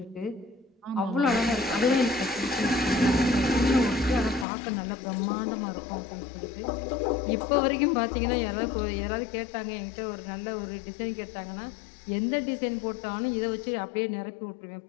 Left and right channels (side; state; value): right; drops out; at 4.5 s